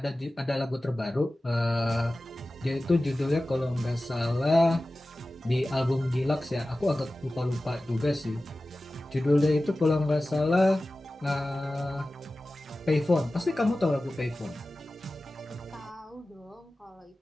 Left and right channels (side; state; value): both; normal; correlation 0.96